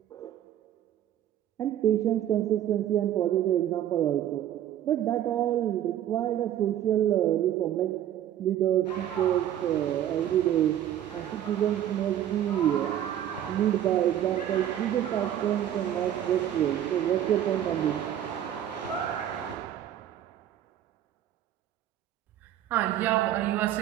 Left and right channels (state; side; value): quieter; left; 11.2 dB